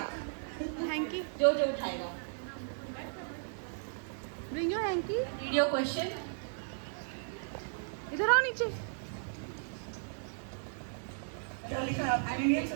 Hanky, जो जो उठाएगा। Bring your hanky. Read your question. इधर आओ नीचे। क्या लिखा है आपने? Indian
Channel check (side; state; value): left; silent; 54 dB below the other